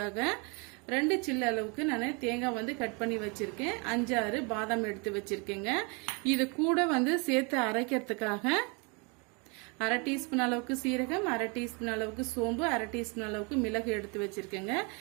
2 சில்லு அளவுக்கு நான் தேங்காய் வந்து கட் பண்ணி வச்சிருக்கேன் 5-6 பாதாம் எடுத்து வச்சிருக்கேங்க இது கூட வந்து சேர்த்து அரைக்கிறதுக்காக 1/2 டீஸ்பூன் அளவுக்கு சீரகம் 1/2 டீஸ்பூன் அளவுக்கு சோம்பு 1/2 டீஸ்பூன் அளவுக்கு மிளகு எடுத்து வச்சிருக்கேங்க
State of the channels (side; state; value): left; quieter; 31.9 dB